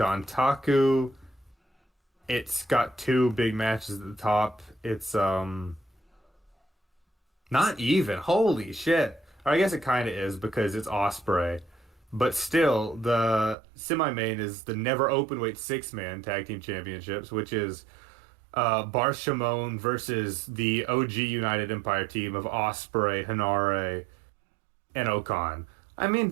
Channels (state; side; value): drops out; left; at 13.6 s